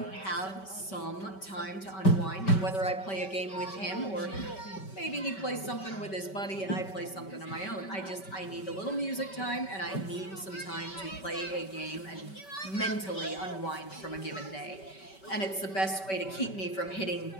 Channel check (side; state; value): right; late; 5.2 ms